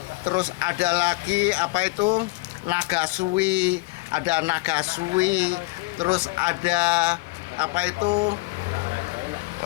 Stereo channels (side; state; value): right; quieter; 24.9 dB